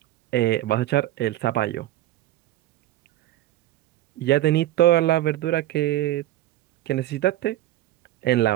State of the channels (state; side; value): quieter; left; 14.7 dB